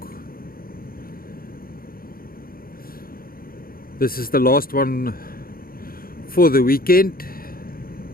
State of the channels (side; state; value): right; late; 0.42 ms